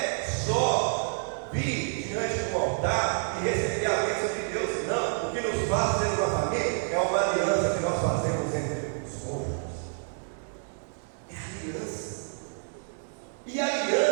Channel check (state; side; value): silent; left; digital silence